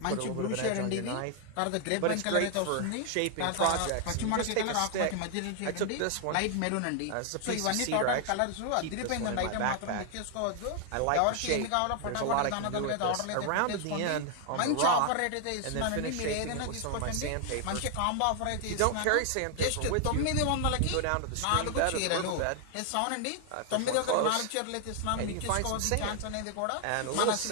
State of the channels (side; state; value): both; different; correlation 0.00